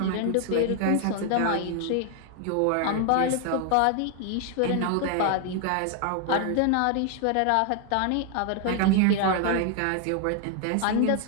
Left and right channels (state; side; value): different; both; correlation 0.00